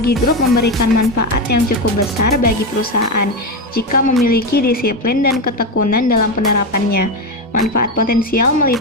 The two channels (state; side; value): normal; both; correlation 0.14